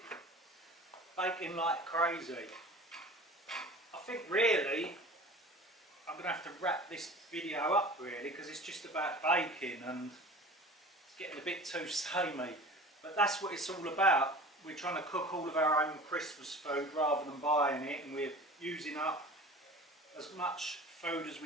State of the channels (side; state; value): both; normal; correlation 0.40